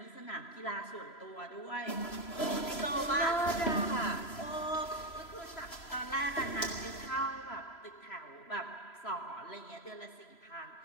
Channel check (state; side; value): late; right; 3.0 ms